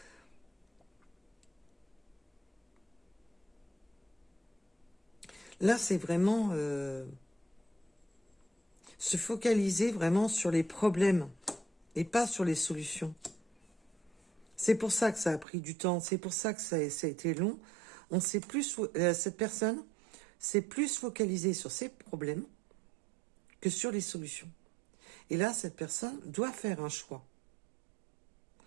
Là, c'est vraiment se focaliser vraiment sur les problèmes et pas sur les solutions. C'est pour ça que ça a pris du temps, c'est pour ça que ça a été long. Cette personne s'est plus focalisée sur ses problèmes que sur les solutions. Et là, cette personne doit faire un choix,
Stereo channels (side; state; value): left; drops out; at 15.5 s